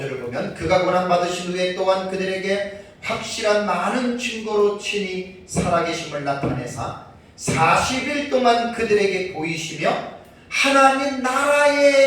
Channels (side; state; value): both; identical; correlation 1.00